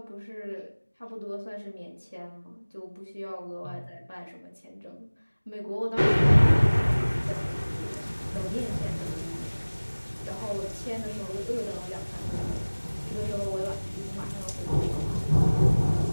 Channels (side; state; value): both; inverted; correlation -1.00